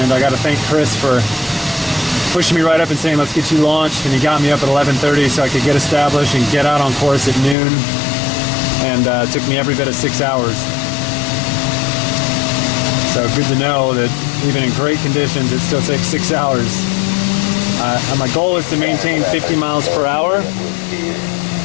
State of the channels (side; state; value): right; drops out; at 7.6 s